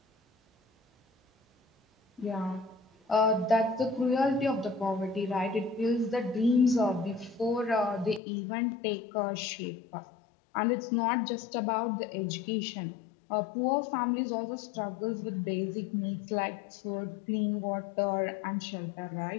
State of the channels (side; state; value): right; drops out; at 8.2 s